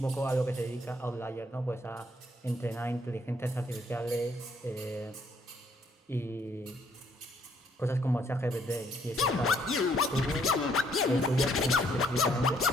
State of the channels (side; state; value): both; normal; correlation 0.68